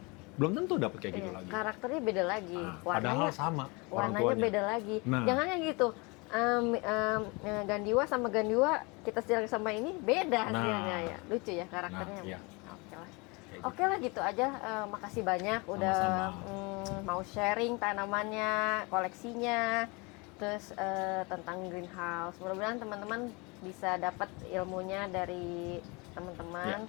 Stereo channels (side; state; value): right; quieter; 27.9 dB